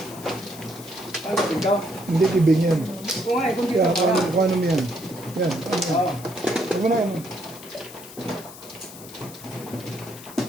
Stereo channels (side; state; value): left; noise; hiss, 16 dB below the sound